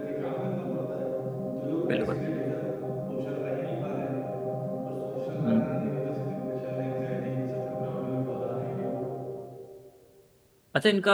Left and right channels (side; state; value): both; identical; correlation 1.00